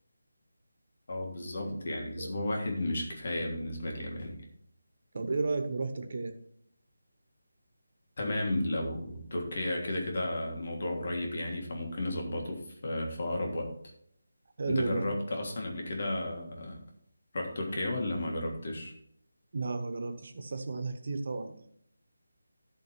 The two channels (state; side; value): inverted; both; correlation -0.89